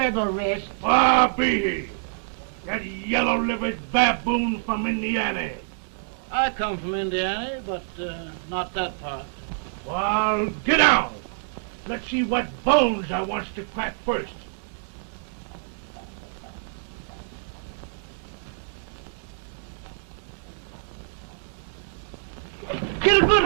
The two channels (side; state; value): left; silent; 61 dB below the other